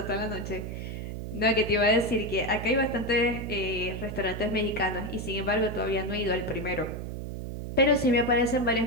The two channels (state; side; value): noise; right; hum, 6 dB below the sound